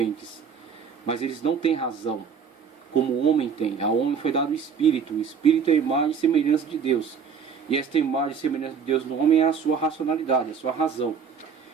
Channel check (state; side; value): quieter; left; 6.5 dB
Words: mas eles não têm razão, como o homem tem. Ao homem foi dado o Espírito é a imagem e semelhança de Deus, e esta imagem e semelhança de Deus no homem é a sua racionalidade, a sua razão.